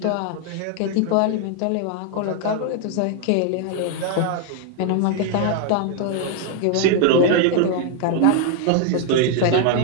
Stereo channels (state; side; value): different; both; correlation 0.00